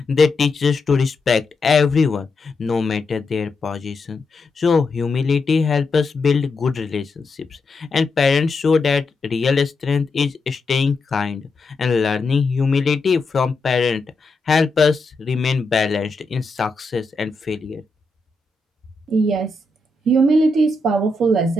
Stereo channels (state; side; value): quieter; right; 3.1 dB